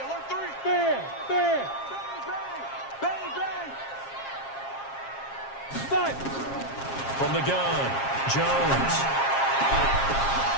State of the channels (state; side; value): late; right; 7.4 ms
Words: 3. Bang, bang. Bang, bang. Five. From the gun, Jones.